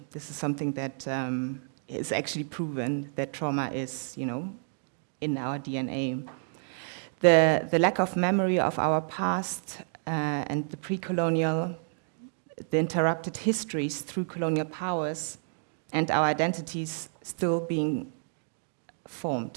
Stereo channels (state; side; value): silent; left; digital silence